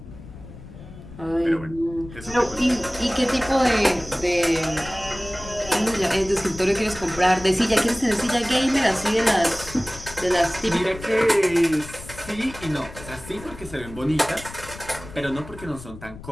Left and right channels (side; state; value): left; noise; rumble, 15 dB below the sound